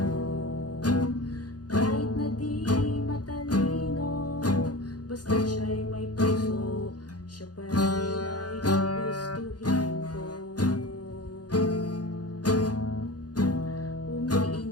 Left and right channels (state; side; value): late; right; 0.69 ms